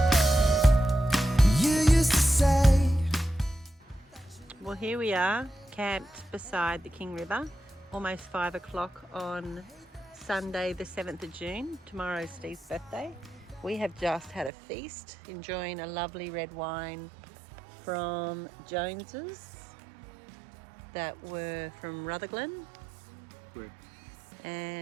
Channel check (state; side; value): drops out; left; at 14.5 s